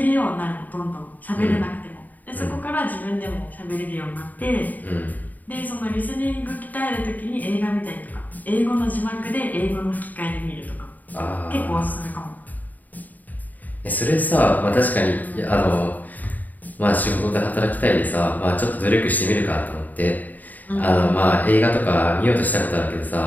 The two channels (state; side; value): late; right; 0.082 ms